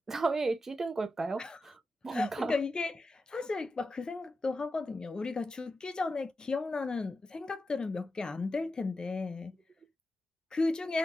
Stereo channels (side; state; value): both; normal; correlation 0.90